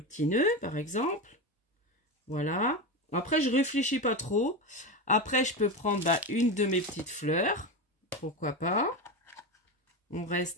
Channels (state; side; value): normal; both; correlation 0.18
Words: petit nœud par exemple. Voilà. Après je réfléchis pas trop. Après je peux prendre une de mes petites fleurs. Pourquoi pas. On